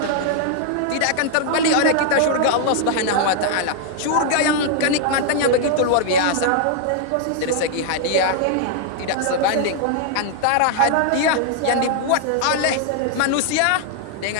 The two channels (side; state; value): both; different; correlation -0.01